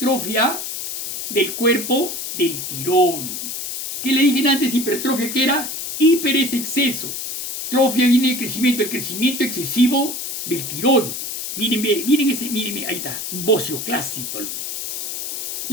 del cuerpo del tiroides. ¿Qué le dije antes? Hipertrofia, ¿qué era? Hiper es exceso. Trofia viene de crecimiento, el crecimiento excesivo del tiroides. Miren, miren, ahí está, un bocio clásico.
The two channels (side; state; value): left; noise; hiss, 5 dB below the sound